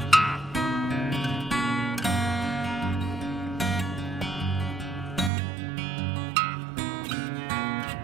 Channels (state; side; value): drops out; left; at 5.3 s